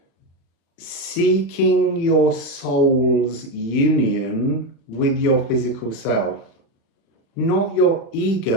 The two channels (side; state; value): right; late; 35 ms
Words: seeking your soul's union with your physical self. Not your